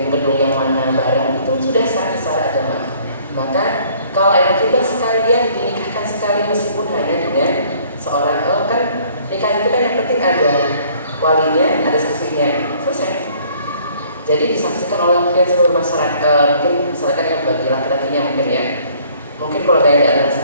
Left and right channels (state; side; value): inverted; both; correlation -0.58